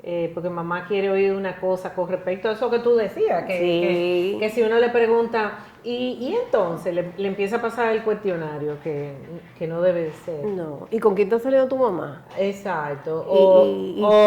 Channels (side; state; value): both; identical; correlation 1.00